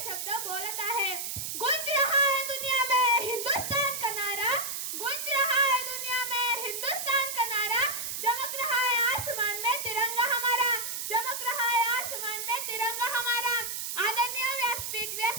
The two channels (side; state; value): right; noise; hiss, 4 dB below the sound